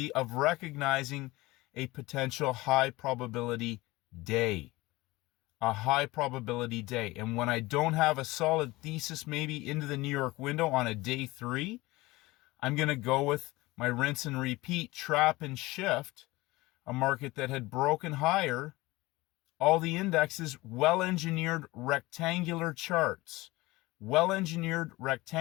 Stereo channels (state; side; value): quieter; right; 20.4 dB